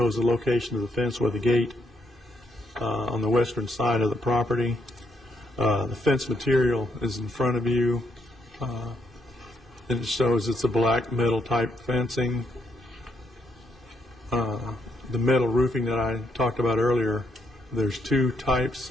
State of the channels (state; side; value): normal; both; correlation 0.76